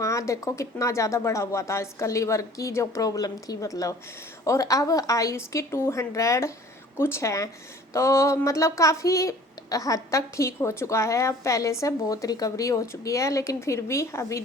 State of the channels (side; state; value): both; normal; correlation 0.49